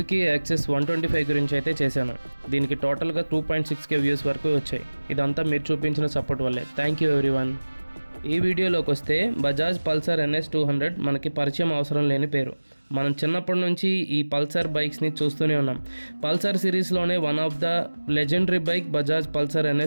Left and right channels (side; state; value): both; inverted; correlation -1.00